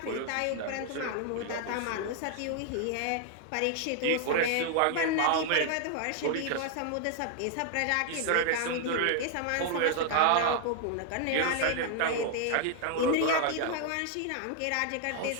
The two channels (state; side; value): different; both; correlation 0.00